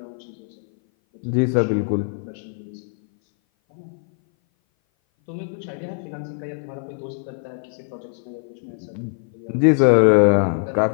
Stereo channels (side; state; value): right; silent; 58 dB below the other